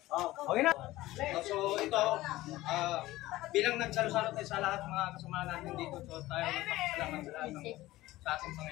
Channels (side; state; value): right; quieter; 17.4 dB